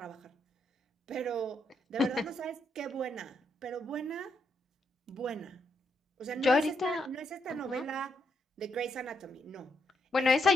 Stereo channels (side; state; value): both; normal; correlation 0.78